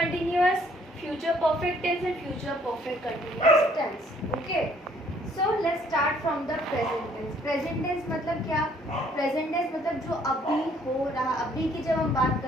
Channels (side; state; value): both; normal; correlation 0.62